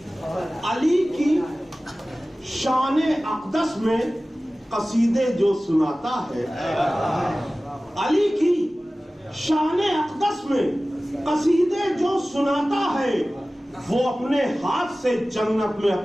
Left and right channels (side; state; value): both; normal; correlation 0.97